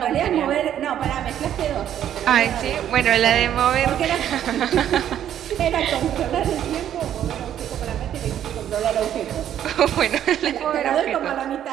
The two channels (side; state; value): left; quieter; 10.5 dB